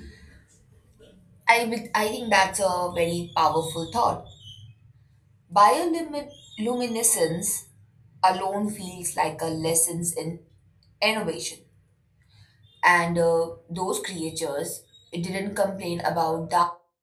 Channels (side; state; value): both; identical; correlation 1.00